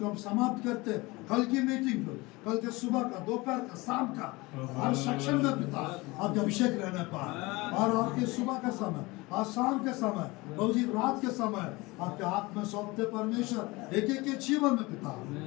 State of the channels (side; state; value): right; quieter; 23.0 dB